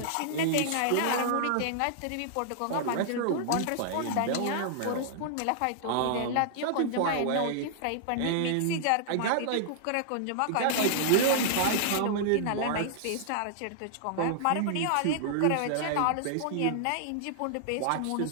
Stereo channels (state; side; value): different; both; correlation -0.01